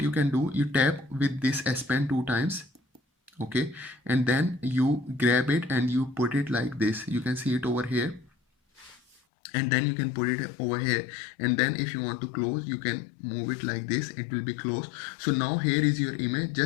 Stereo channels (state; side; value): drops out; right; at 9.2 s